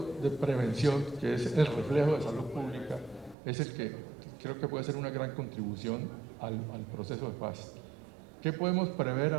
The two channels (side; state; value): left; drops out; at 3.4 s